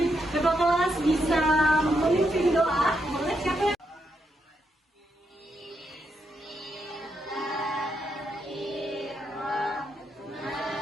Bapak kelas bisa memimpin doa. Boleh siapa yang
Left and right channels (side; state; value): both; normal; correlation 0.81